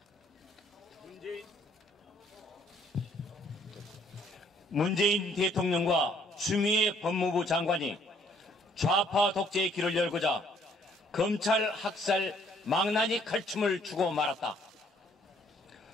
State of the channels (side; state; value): both; normal; correlation 0.63